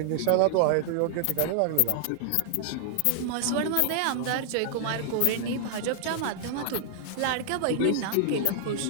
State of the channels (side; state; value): both; different; correlation 0.00